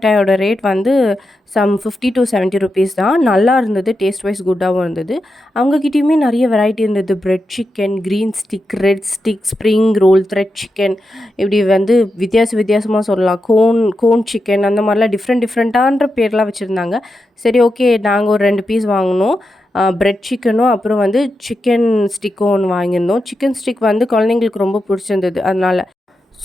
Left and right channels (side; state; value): both; normal; correlation 0.88